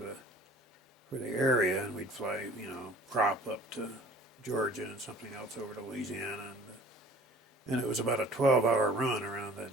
the area, and we'd fly, you know, prop up to Georgia and something else over to Louisiana, and it was about a 12-hour run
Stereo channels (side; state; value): both; normal; correlation 0.48